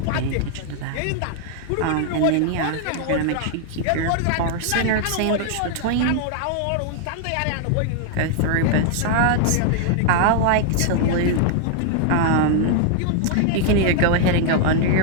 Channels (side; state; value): both; different; correlation 0.00